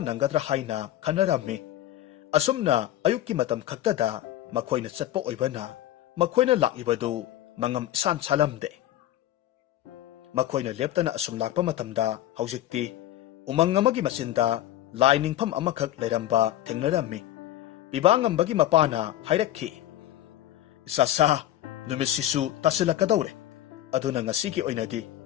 nangadra haina khanarammi asumna ayukki matam khaktada makhoina chatpa oibana makhoina laklibadu mangam san salamde makhoina leptana asum lakpa matamda haujikti umang amagi masinda lainingpham amakhak leiramba thengnarammi bibangambagi mapana hairakhi sasa numisisu tasilakadawre aduna ngasigi oinadi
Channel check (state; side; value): quieter; right; 13.3 dB